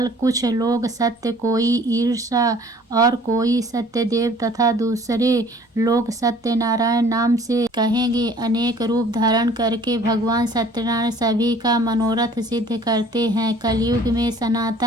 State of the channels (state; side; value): normal; both; correlation 0.52